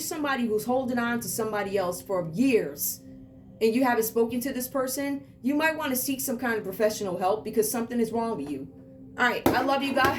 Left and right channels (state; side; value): identical; both; correlation 1.00